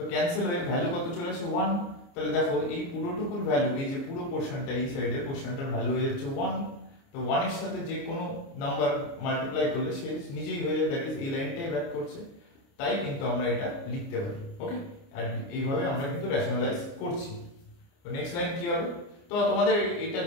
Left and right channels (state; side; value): late; right; 29 ms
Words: ক্যান্সেল হয়ে ভ্যালু কত চলে আসে 1। তাহলে দেখো এই পুরোটুকুর ভ্যালু, এই যে পুরো পোরশনটা এই সাইডে পোরশনটার ভ্যালু হয়ে যাচ্ছে 1। তো 1 এর সাথে যে কোনো নাম্বার মাল্টিপ্লাই করলে সে নিজেই হয়ে যায়, দ্যাট ইজ এই লাইনটাই ব্যাক করছে, তাই কিন্তু আমরা এটা লিখতে পারি। ওকে, আর এইভাবে আমরা কিন্তু রেশনালাইজ করছি। তো নেক্সট লাইন কি হবে? তো তোমাদের এটা